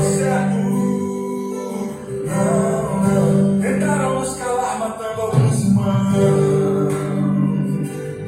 certo. Não. Tentaram nos calar, matando alguns irmãos,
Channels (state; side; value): identical; both; correlation 1.00